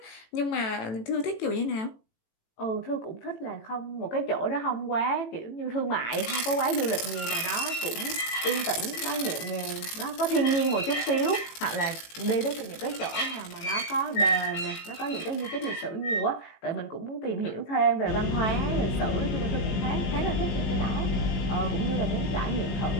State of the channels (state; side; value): late; right; 18 ms